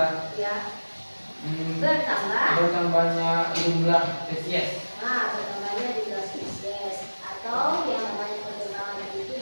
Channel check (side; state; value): both; inverted; correlation -1.00